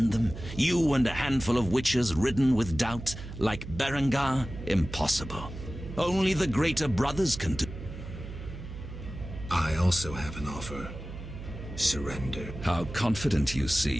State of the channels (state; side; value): noise; right; hum, 11 dB below the sound